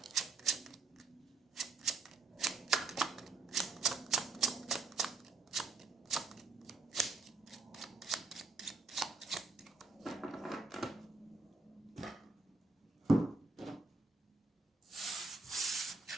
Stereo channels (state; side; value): quieter; left; 3.6 dB